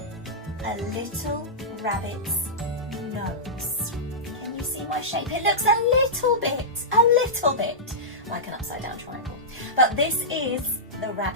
a little rabbit's nose. Can you see my shape? It looks a little bit like an upside down triangle. But this is the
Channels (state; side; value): normal; both; correlation -0.15